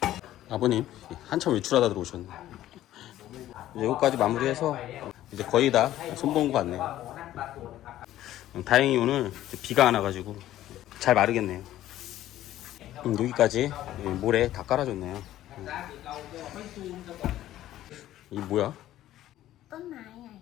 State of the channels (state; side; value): quieter; right; 13.6 dB